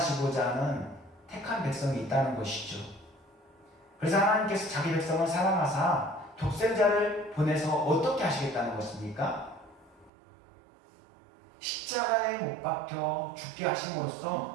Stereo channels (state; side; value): drops out; left; at 10.1 s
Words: 하는 택한 백성이 있다는 것이죠. 그래서 하나님께서 자기 백성을 사랑하사 독생자를 보내서 어떻게 하시겠다는 것입니까? 십자가에 못 박혀 죽게